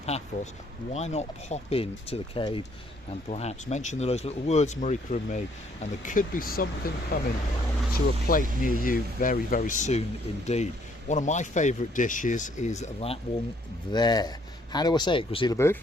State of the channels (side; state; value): both; normal; correlation 0.65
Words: why not pop in to The Cave and perhaps mention those little words, Marika and me, and there could be something coming to a plate near you very, very soon indeed. One of my favourite dishes is that one there. How do I say it, Gracila